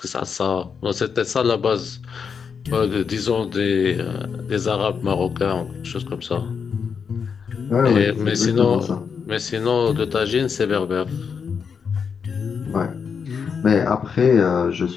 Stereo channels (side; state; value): right; quieter; 6.3 dB